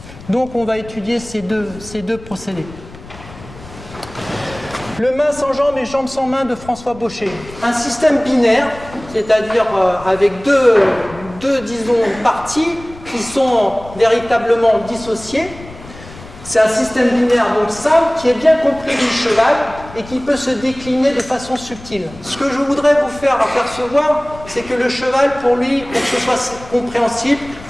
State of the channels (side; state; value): left; noise; rumble, 18 dB below the sound